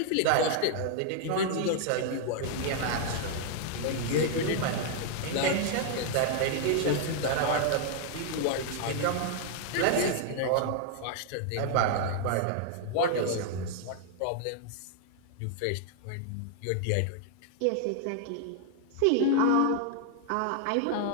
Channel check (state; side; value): different; both; correlation -0.01